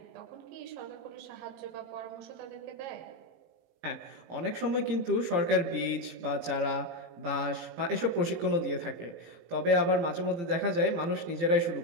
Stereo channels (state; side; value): late; left; 17 ms